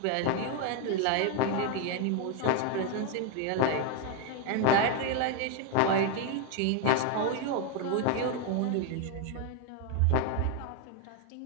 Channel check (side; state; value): both; different; correlation 0.01